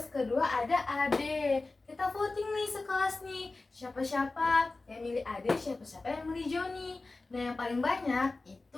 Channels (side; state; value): right; quieter; 3.4 dB